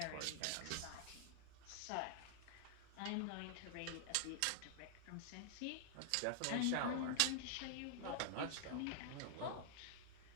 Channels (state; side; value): different; both; correlation -0.01